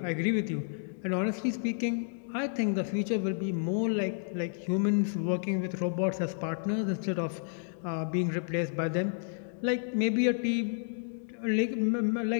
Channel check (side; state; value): right; silent; digital silence